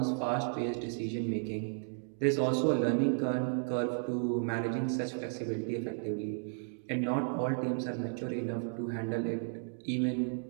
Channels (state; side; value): silent; left; digital silence